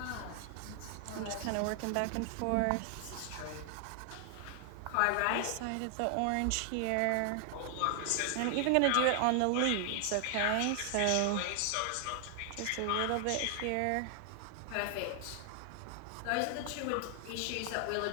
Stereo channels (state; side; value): different; both; correlation 0.00